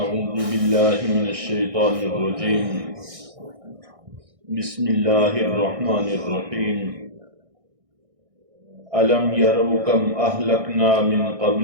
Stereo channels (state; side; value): late; left; 1.6 ms